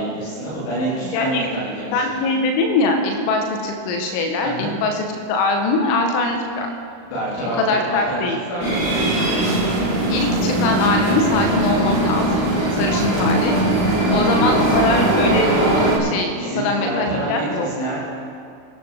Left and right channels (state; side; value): late; right; 39 ms